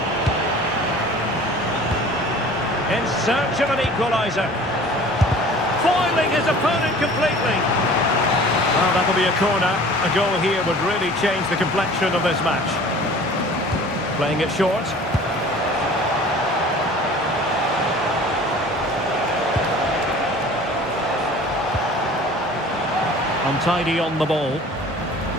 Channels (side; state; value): both; normal; correlation 0.45